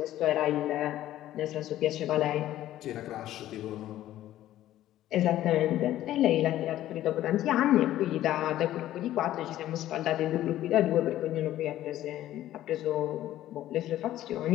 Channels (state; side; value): quieter; right; 13.5 dB